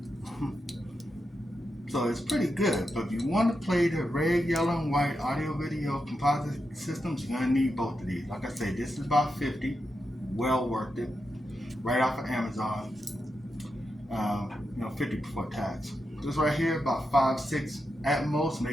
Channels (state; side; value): normal; both; correlation 0.87